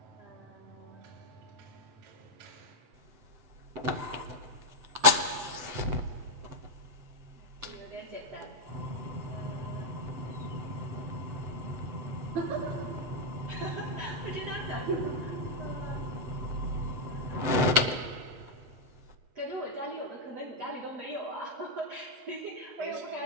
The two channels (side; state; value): left; late; 7.9 ms